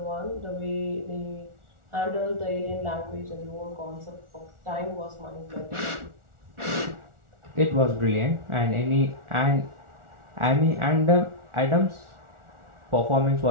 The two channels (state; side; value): late; left; 1.4 ms